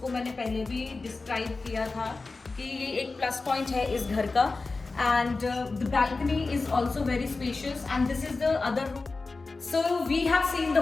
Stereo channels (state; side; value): quieter; right; 3.7 dB